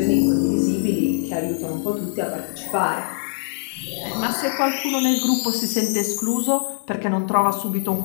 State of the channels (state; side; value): silent; right; 61 dB below the other